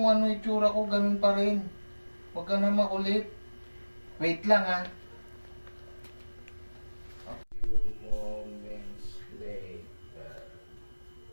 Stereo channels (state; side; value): inverted; both; correlation -1.00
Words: ano itsura ko, ganun pa rin. Huwag ka na makulit. Wait lang ha. A few moments later.